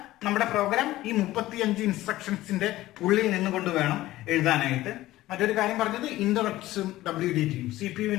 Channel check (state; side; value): quieter; right; 16.3 dB